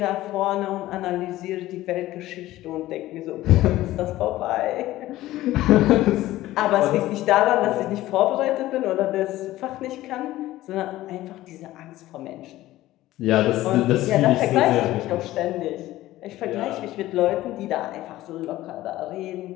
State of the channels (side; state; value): right; quieter; 15.8 dB